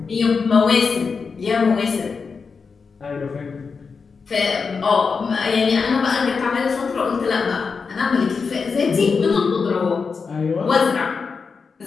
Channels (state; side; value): quieter; right; 5.2 dB